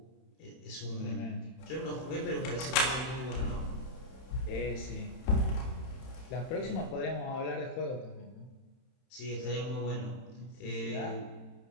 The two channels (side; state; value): right; late; 31 ms